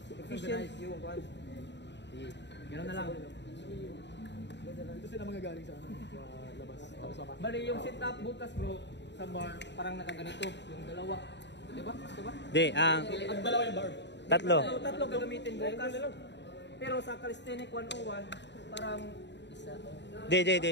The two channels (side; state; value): right; late; 0.51 ms